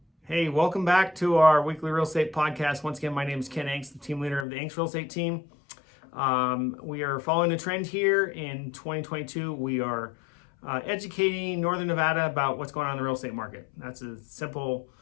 Hey, welcome back to our weekly real estate podcast. Once again, my name is Ken Angst, the team leader of the Angst real estate team. We are following a trend here in 2022. We are educating Northern Nevada about what's going on in the real estate market. That's a simple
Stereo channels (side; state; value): right; drops out; at 4.5 s